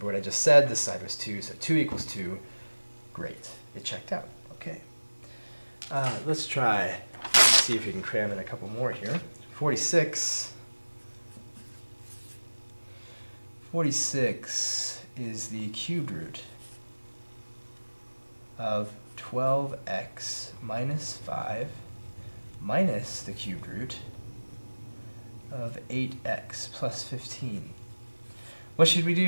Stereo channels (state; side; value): inverted; both; correlation -1.00